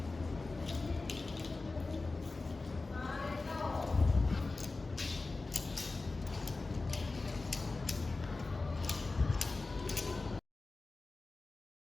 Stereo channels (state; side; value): quieter; right; 3.5 dB